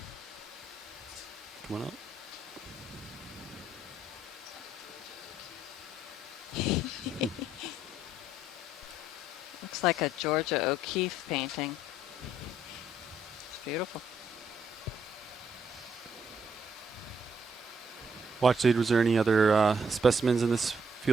Come on up. Looks like a Georgia O'Keeffe painting. It's beautiful. Watch lead, was there any other specimens in this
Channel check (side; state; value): both; normal; correlation 0.71